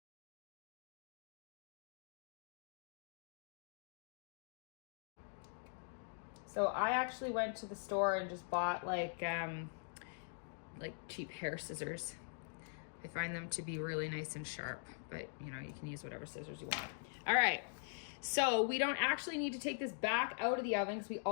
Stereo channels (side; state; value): right; silent; digital silence